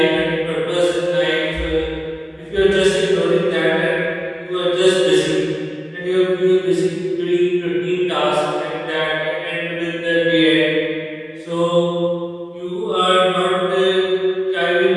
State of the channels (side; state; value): both; identical; correlation 1.00